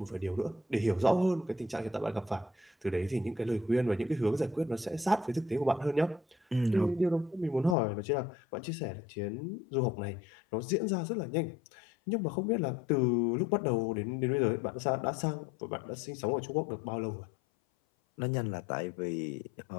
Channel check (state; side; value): drops out; right; at 7.8 s